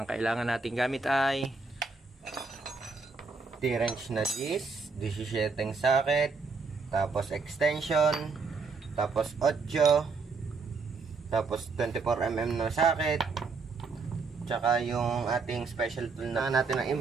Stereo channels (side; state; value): left; quieter; 4.4 dB